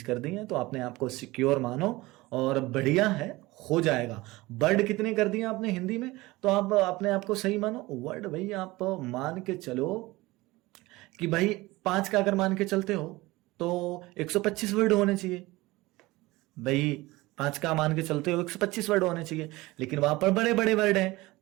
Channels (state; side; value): quieter; left; 20.3 dB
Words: कर दी है तो अपने आप को सिक्योर मानो और बढ़िया है, हो जाएगा। वर्ड कितने कर दिए आपने हिंदी में, तो आप अपने आप को सही मानो। वर्ड भाई आप मान के चलो कि भाई 5 का अगर मान के चलते हो तो 125 वर्ड होने चाहिए भाई। 5 का मान के चलते हो 125 वर्ड होने चाहिए, लेकिन वहां पर बड़े बड़े वर्ड हैं।